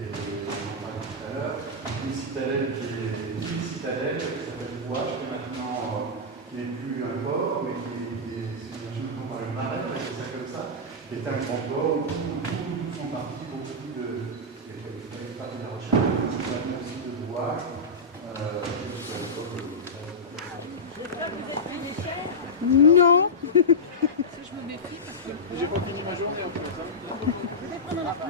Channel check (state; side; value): normal; both; correlation -0.10